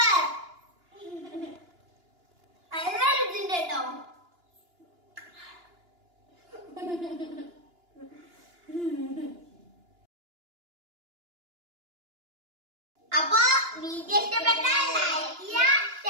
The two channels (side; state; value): left; late; 2.9 ms